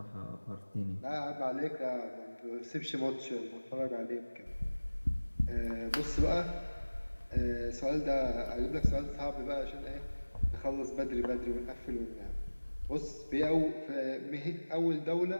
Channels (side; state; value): both; inverted; correlation -1.00